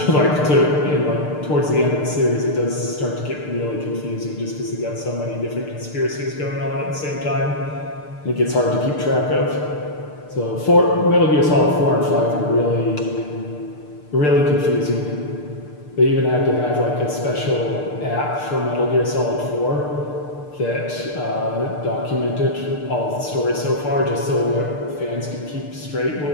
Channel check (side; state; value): right; late; 6.7 ms